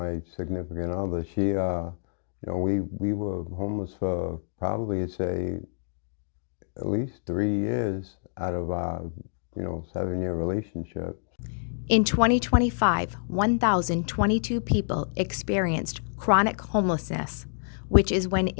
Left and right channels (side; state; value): right; silent; digital silence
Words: significant other. We were homeless for probably, I'd say, at least 3 years out of our, 7-year relationship. In 2025, 1,022 people experienced chronic homelessness, which is when